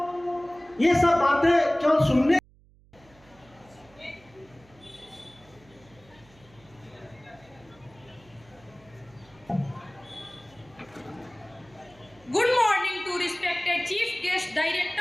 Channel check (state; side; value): noise; right; hum, 28 dB below the sound